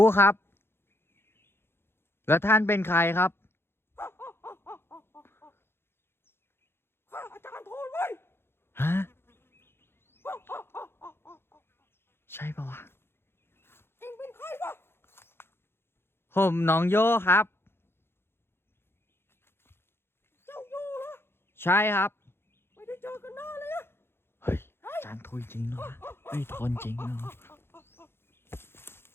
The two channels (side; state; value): right; late; 0.11 ms